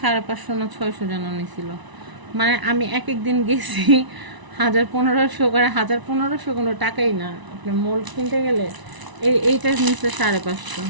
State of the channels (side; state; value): left; late; 1.0 ms